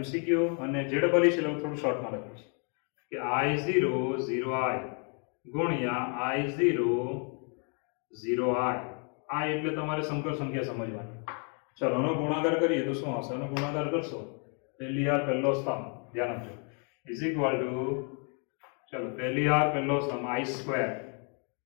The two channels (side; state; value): right; quieter; 39.3 dB